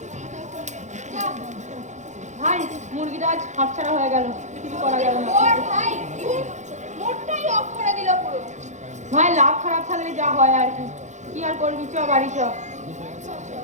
ভাই হয়ে গেল, কিছু করা গেল না। ভাই মোটটাই অফ করে দিল পুরো। ভাই লাভ খারাপ থাকলে যা হয় আর কি, কি আর করবি, চ বাড়ি চ।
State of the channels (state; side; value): late; left; 0.34 ms